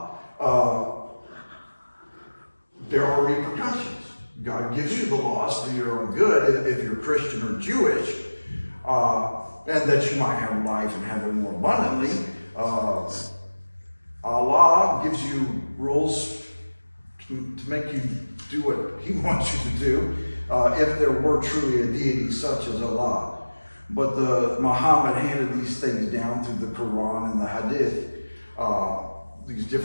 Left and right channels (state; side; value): inverted; both; correlation -1.00